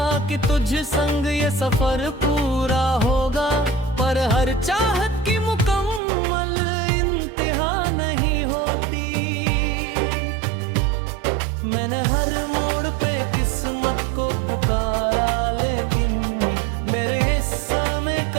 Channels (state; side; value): drops out; left; at 6.0 s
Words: कि तुझ संग ये सफर पूरा होगा, पर हर चाहत की मुकम्मल इंतहा नहीं होती। मैंने हर मोड़ पे किस्मत को पुकारा, लेकिन मेरे हिस्से में